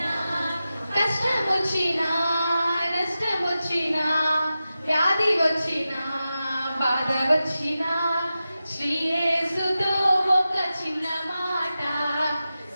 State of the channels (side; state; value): both; inverted; correlation -0.93